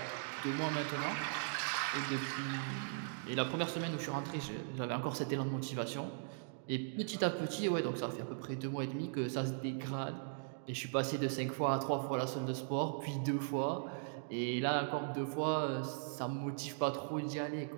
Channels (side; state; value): left; silent; digital silence